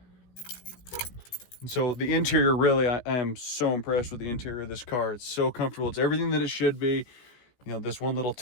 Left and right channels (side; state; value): right; late; 17 ms